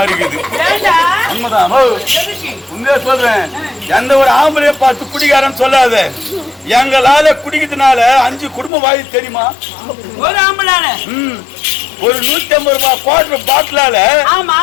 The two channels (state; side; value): drops out; right; at 8.7 s